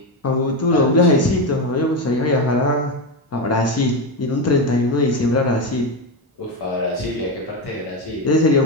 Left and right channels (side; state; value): both; normal; correlation 0.13